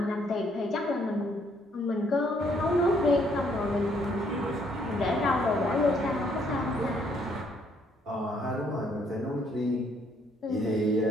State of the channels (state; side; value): normal; both; correlation 0.68